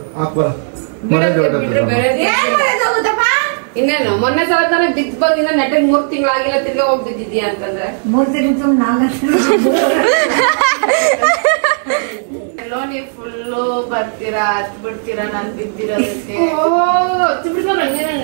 ಇನ್ನೇನು ಮೊನ್ನೆ ಸಲ ತಾನೆ ಬಿದ್ದು ಬಂದಿನ ನೆಟ್ಟಿಗೆ 3 ತಿಂಗಳಾಗಿಲ್ಲ, ತಿರ್ಗಿ ಹೋಗಿ ಬಿದ್ದಿದ್ಯಾ ಅಂತಂದ್ರೆ 3 ತಿಂಗಳು 4 ನೀವು ಫುಲ್ಲು ಬರ್ತೀರಾ ಹತ್ ಬಿಡ್ತೀರಾ ನಾನು ಬಿದ್ದಿರೋದಕ್ಕೆ.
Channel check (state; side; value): silent; left; digital silence